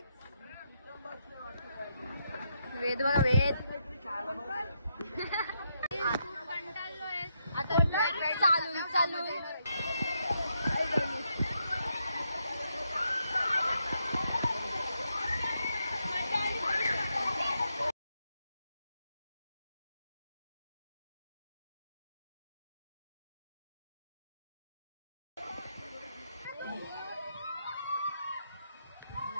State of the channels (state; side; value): inverted; both; correlation -0.80